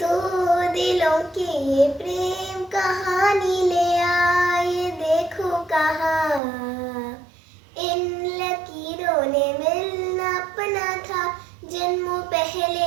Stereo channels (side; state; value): left; drops out; at 6.4 s